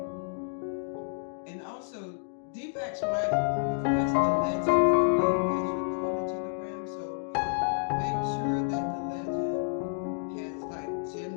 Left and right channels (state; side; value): silent; right; digital silence